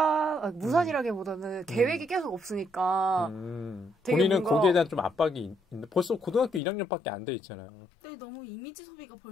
계획이 계속 없으니까 본인은 거기에 대한 좀 압박이 있는데 벌써 고등학교 1학년밖에 안 돼 있잖아요. 근데 너무 이미지 소비가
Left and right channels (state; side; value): drops out; right; at 6.6 s